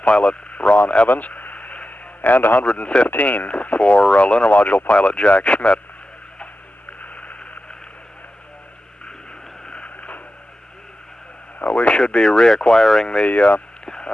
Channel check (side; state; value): both; normal; correlation 0.92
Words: pilot Ron Evans, and 115 for lunar module pilot Jack Schmitt. We should be reacquiring the